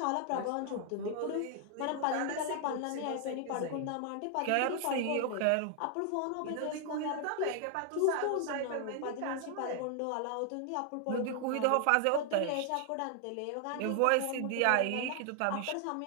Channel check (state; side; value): different; both; correlation 0.00